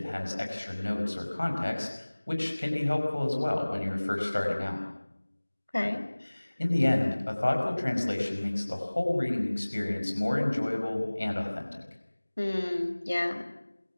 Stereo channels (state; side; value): inverted; both; correlation -1.00